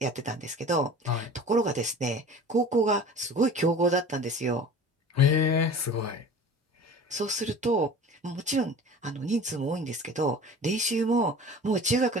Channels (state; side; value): normal; both; correlation 0.40